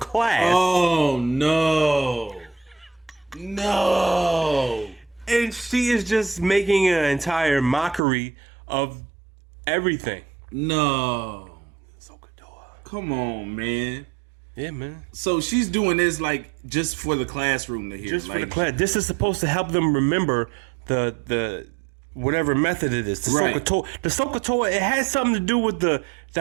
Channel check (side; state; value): left; drops out; at 8.0 s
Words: Oh, no. No. And she is just making an entire mockery of everything. No. Come on, man. Yeah, man. So she's doing this like just for the classroom to hear. Just for the class. This is supposed to help them remember the whatever method it is. The Soh-Cah-Toa. The Soh-Cah-Toa, it has something to do with the